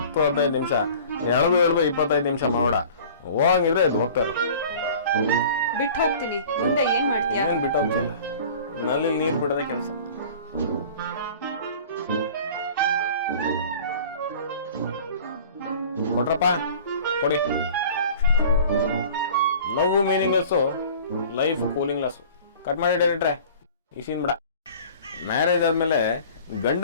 ನಿಮಿಷ. ಎಳೆದು 25 ನಿಮಿಷ ಮಾಡ. ಹೋಗಂಗಿದ್ರೆ ಇದು ಹೋಗ್ತಾರ. ಬಿಟ್ಟು ಹೋಗ್ತೀನಿ. ಮುಂದೆ ಏನ್ ಮಾಡ್ತೀಯ? ಏನ್ ಬಿಟ್ಟು ಹೋಗ್ತಿಲ್ಲ, ನಲ್ಲಿ ನೀರ್ ಬಿಡೋದೇ ಕೆಲಸ. ಕೊಟ್ರಪ್ಪ, ಕೊಡಿ. ಲವ್ ಮೀನಿಂಗ್ಲೆಸ್ಸು, ಲೈಫ್ ಕೂಲಿಂಗ್ಲೆಸ್ಸು. ಕಟ್ ಮಾಡಿ ಡೈರೆಕ್ಟ್ರೆ, ಈ ಸೀನ್ ಬಿಡ. ಮ್ಯಾರೇಜ್ ಆದ್ಮೇಲೆ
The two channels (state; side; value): inverted; both; correlation -0.44